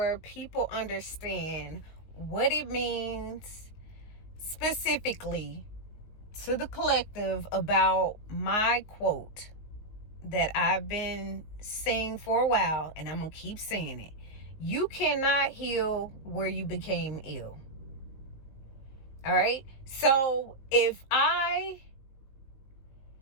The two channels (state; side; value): late; right; 19 ms